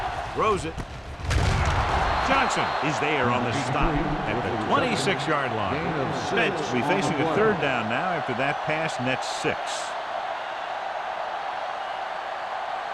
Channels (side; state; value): both; identical; correlation 1.00